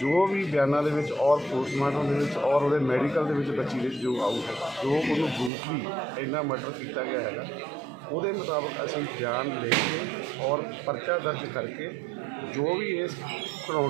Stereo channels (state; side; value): drops out; left; at 5.5 s